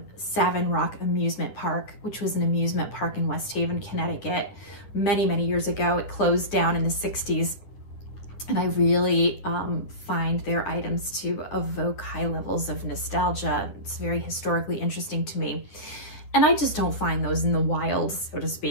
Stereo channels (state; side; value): late; right; 10 ms